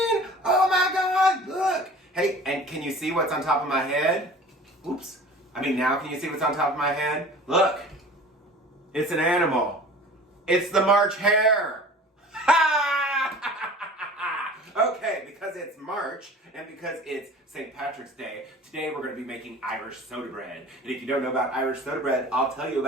Oh my god, look! Hey, and can you see what's on top of my head? Oops. Now can you see what's on top of my head? Look! It's an animal. It's the March hare! Okay, because it's March and because it's St. Patrick's Day, today we're going to be making Irish soda bread. And if you don't know about Irish soda bread, I'll tell you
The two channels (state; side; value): normal; both; correlation 0.42